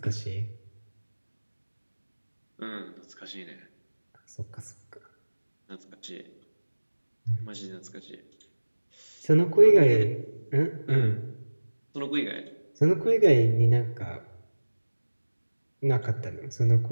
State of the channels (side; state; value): both; inverted; correlation -1.00